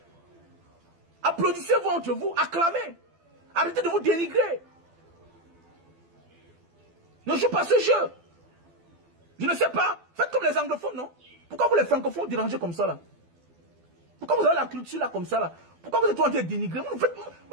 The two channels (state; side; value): late; left; 12 ms